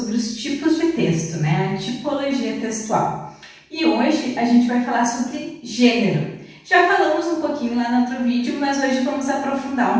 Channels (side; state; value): both; identical; correlation 1.00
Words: os tipos de texto, né? A tipologia textual. E hoje a gente vai falar sobre gênero. Já falamos um pouquinho lá no outro vídeo, mas hoje vamos aprofundar